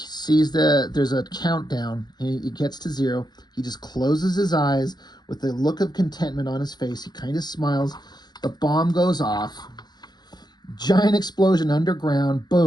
there's a countdown. He gets to 0. He just closes his eyes with a look of contentment on his face. He kind of smiles. The bomb goes off. Giant explosion underground.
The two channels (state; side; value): late; right; 0.20 ms